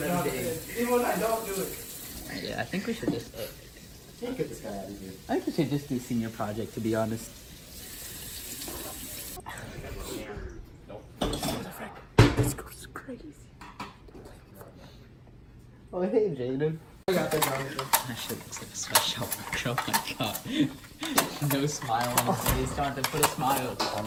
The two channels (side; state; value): both; identical; correlation 1.00